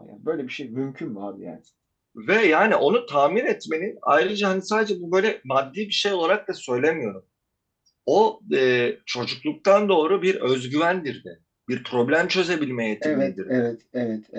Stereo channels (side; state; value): both; identical; correlation 1.00